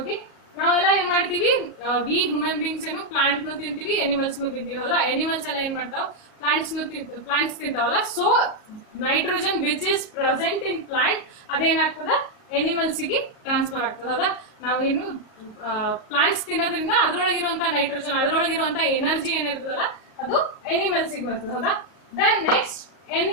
ನಾವೆಲ್ಲ ಏನ್ ಮಾಡ್ತೀವಿ, V human beings ಏನು plant ನು ತಿಂತೀವಿ, animals ನು ತಿಂತೀವಿ. ಹೌದಾ? Animals ಎಲ್ಲ ಏನ್ ಮಾಡ್ತಾವ, ಪ್ಲಾಂಟ್ಸ್ ತಿಂತಾವಲ್ಲ. So nitrogen which is present in plant ಅದೇನಾಗ್ತದ, ಎನಿಮಲ್ಸ್ ಗೆ ಟ್ರಾನ್ಸ್ಫರ್ ಆಗ್ತದ. ಹೌದಾ? ನಾವೇನು ಪ್ಲಾಂಟ್ಸ್ ತಿನ್ನೋದ್ರಿಂದ ಅದ್ರೊಳಗಿರುವಂತ ನೈಟ್ರೋಜನ್, ಅದ್ರೊಳಗಿರುವಂತ ಎನರ್ಜಿ ಏನಿರ್ತದಲ್ಲ ಅದು ಎನಿಮಲ್ಸ್ ಗೆ ಬರ್ತದೆ. ಹೌದಾ? Then next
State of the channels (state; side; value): late; right; 37 ms